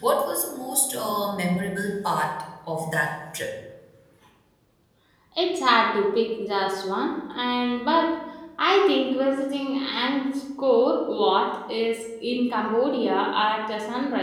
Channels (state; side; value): identical; both; correlation 1.00